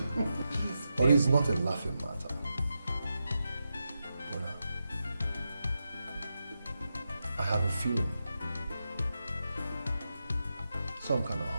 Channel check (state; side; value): inverted; both; correlation -0.88